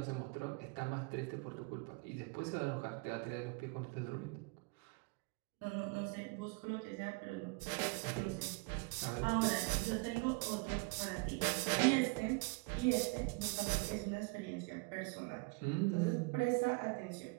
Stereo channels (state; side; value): quieter; left; 29.5 dB